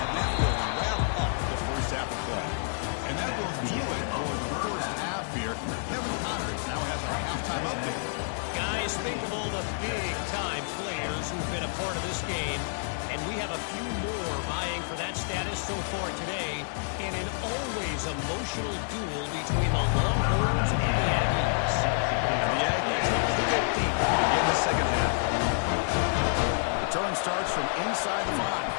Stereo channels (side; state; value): right; silent; 58 dB below the other